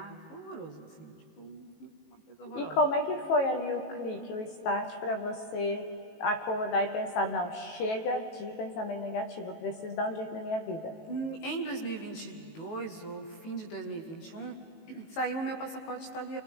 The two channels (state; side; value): late; right; 18 ms